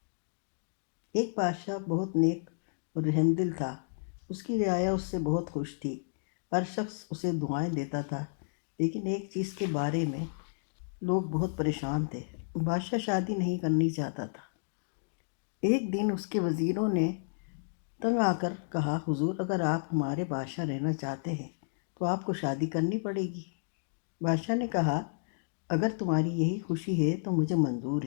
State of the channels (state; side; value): silent; right; digital silence